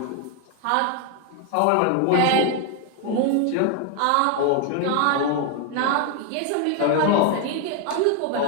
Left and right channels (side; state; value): both; different; correlation 0.01